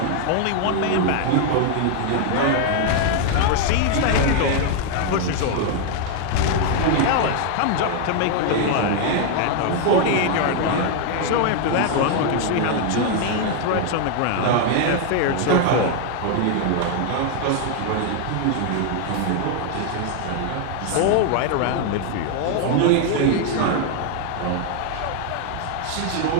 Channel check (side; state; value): both; different; correlation 0.00